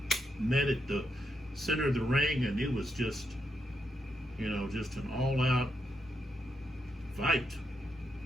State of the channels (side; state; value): both; normal; correlation 0.82